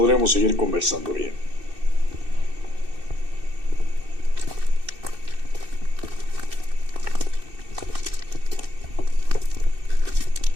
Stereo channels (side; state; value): left; late; 2.6 ms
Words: seguir conversando bien.